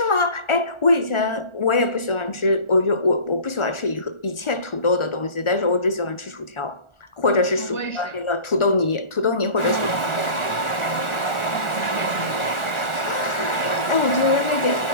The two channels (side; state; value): right; late; 1.4 ms